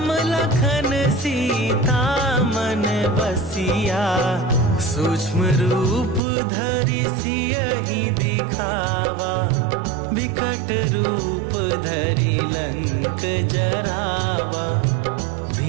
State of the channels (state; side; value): drops out; left; at 6.2 s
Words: लखन सीता मन बसिया। सूक्ष्म रूप धरि सियहि दिखावा, विकट रूप धरि लंक जरावा।